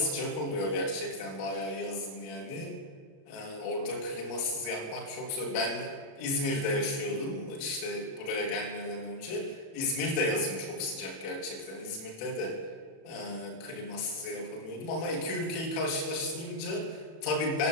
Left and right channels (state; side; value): late; right; 37 ms